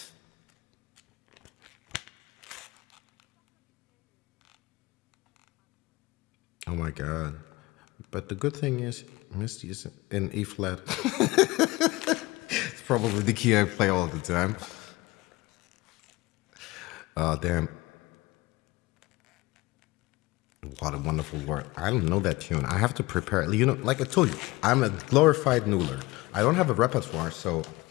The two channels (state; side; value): quieter; right; 21.0 dB